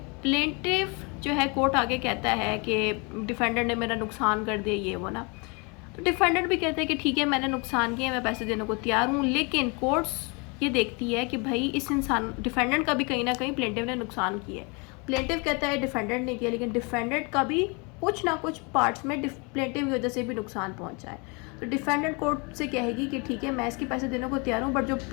प्लेंटिव जो है कोर्ट आगे कहता है कि डिफेंडेंट ने मेरा नुकसान कर दिया ये वो ना, तो डिफेंडेंट भी कहते हैं कि ठीक है मैंने नुकसान किया, मैं पैसे देने को तैयार हूँ, लेकिन कोर्ट्स ये देखती है कि भाई इस इंसान डिफेंडेंट का भी कहीं ना कहीं प्लेंटिव ने नुकसान किया है. प्लेंटिव कहता है डिफेंडेंट ने किया, लेकिन डिफेंडेंट का भी कुछ ना कुछ पार्ट्स में प्लेंटिव की वजह से भी नुकसान पहुंचा है. तो डिफेंडेंट कोर्ट से कहेगी कि ठीक है मैं इसके पैसे देने को तैयार हूँ, बट जो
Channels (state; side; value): quieter; right; 31.0 dB